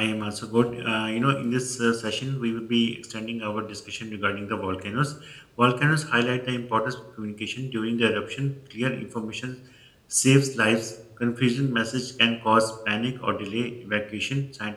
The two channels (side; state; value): both; identical; correlation 1.00